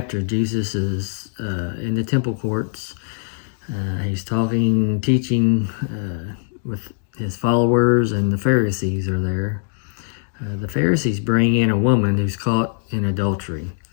Jesus is in the temple courts. He's talking, teaching with His followers, and the Pharisees are there. The Pharisees bring in a woman who's caught in adultery.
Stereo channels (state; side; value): silent; right; digital silence